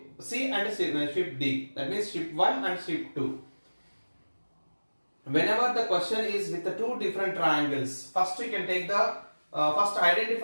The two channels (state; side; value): inverted; both; correlation -1.00